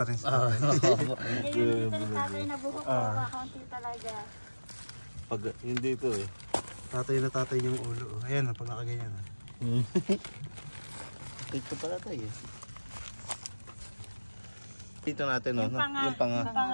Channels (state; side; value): inverted; both; correlation -1.00